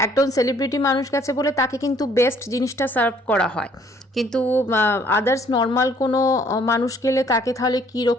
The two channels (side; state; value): both; normal; correlation 0.61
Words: একজন সেলিব্রিটি মানুষ গেছে বলে তাকে কিন্তু বেস্ট জিনিসটা সার্ভ করা হয়, কিন্তু আদার্স নর্মাল কোনো মানুষ গেলে তাকে তাহলে